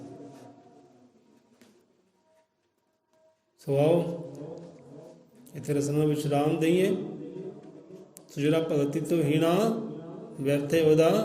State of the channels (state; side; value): identical; both; correlation 1.00